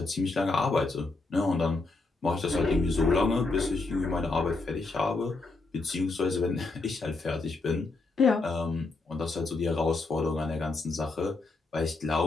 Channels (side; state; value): right; quieter; 3.5 dB